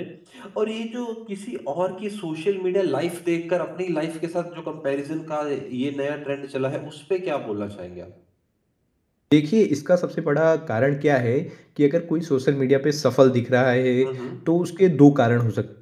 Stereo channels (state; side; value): identical; both; correlation 1.00